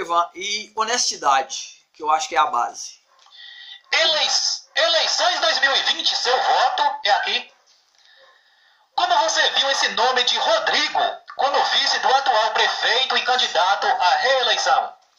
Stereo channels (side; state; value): both; identical; correlation 1.00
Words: E honestidade, que eu acho que é a base. Eleições 2020, seu voto é aqui. Como você viu esse nome de Rodrigo como vice do atual prefeito e candidato à reeleição?